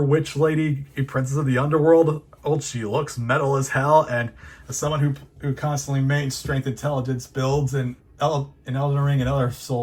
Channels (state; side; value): identical; both; correlation 1.00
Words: witch lady, a princess of the underworld. She looks metal as hell, and as someone who constantly mains strength intelligence builds in Elden Ring and other